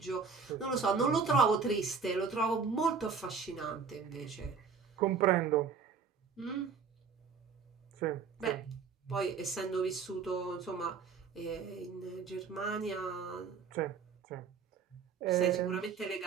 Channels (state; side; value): quieter; left; 5.7 dB